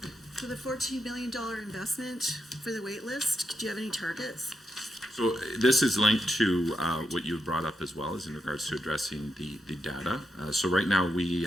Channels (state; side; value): normal; both; correlation 0.84